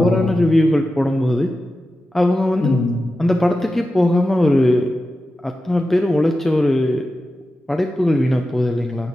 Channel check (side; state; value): both; normal; correlation 0.92